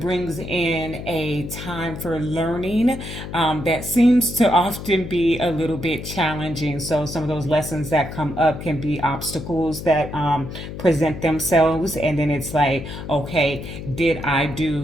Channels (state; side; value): noise; left; hum, 9 dB below the sound